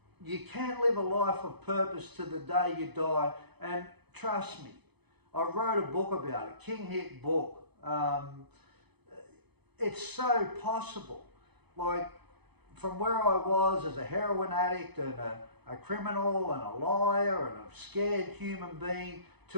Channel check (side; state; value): left; late; 0.99 ms